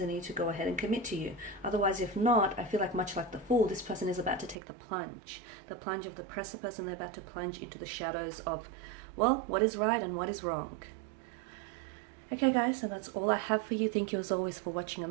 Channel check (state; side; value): drops out; left; at 4.5 s